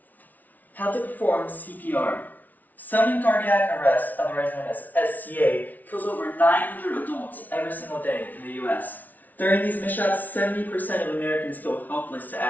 How to perform CPR. Sudden cardiac arrest, otherwise known as SCA, kills over 900 adults every single day in the US. During these mishaps, 70% of Americans feel helpless to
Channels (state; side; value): late; right; 0.079 ms